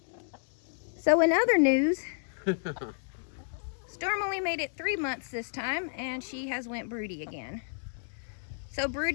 So in other news, Storm only made it 3 months this time, and she has went broody again. So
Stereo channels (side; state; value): right; silent; digital silence